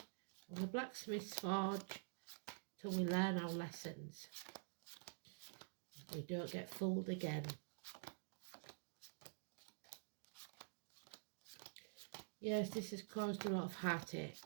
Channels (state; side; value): silent; left; digital silence